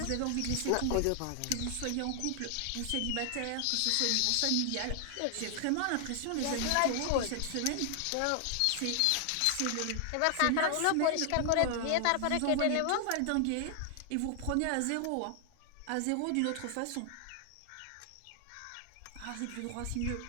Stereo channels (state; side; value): different; both; correlation 0.00